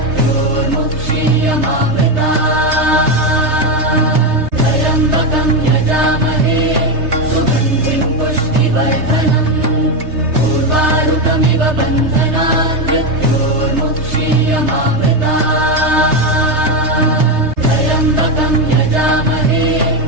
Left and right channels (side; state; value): left; late; 3.3 ms